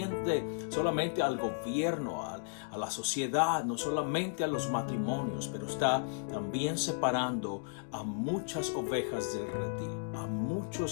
al gobierno, a la sociedad, no solamente a los matrimonios, pero está también separando a muchas ovejas del redil, a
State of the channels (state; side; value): silent; right; digital silence